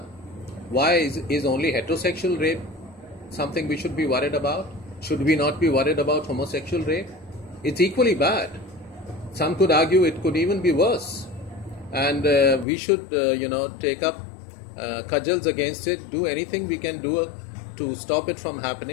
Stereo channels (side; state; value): right; drops out; at 12.7 s